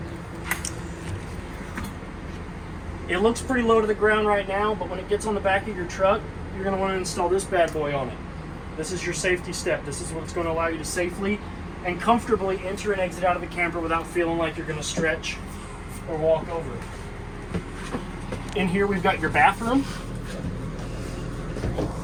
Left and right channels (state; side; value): identical; both; correlation 1.00